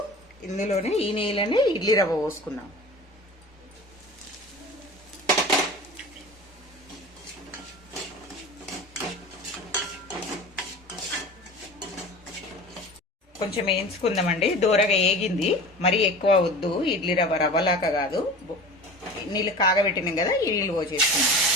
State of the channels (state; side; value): normal; both; correlation 0.37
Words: ఇందులోనే ఈ నెయ్యిలోనే ఇడ్లీ రవ్వ పోసుకుందాం. కొంచెం వేయించుకుందామండి. దూరగా ఏగింది, మరీ ఎక్కువ వద్దు. ఇడ్లీ రవ్వ రవ్వలాగా కాదు. నీళ్ళు కాగబెట్టినాం కదా, ఈ నీళ్ళు పోసేసుకుందాం.